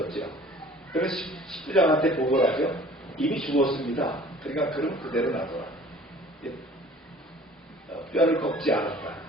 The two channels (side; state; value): both; normal; correlation 0.49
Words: 그래서 십부장한테 보고를 하죠. 이미 죽었습니다. 그러니까 그럼 그대로 놔둬라. 뼈를 꺾지 않았다.